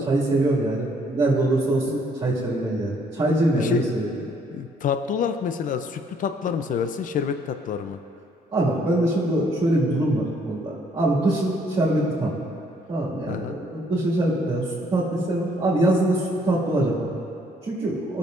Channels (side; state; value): both; normal; correlation 0.66